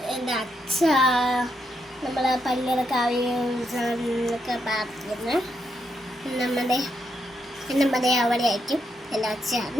എൻ്റെ അച്ഛ, നമ്മളെ പള്ളിയിലൊക്കെ ആവശ്യമൊക്കെ പ്രാർത്ഥിക്കുന്നത്. നമ്മുടെ അവിടെ ആയിരിക്കും എൻ്റെ അച്ഛ.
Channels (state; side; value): normal; both; correlation 0.80